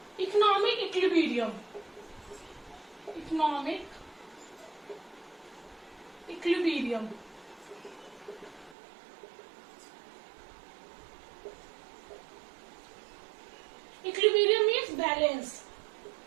economic equilibrium. Economic equilibrium equilibrium means balance.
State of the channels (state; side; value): drops out; left; at 8.8 s